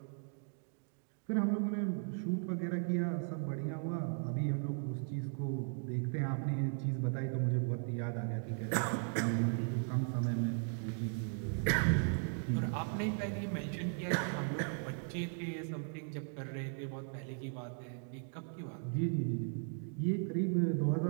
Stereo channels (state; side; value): silent; left; 53 dB below the other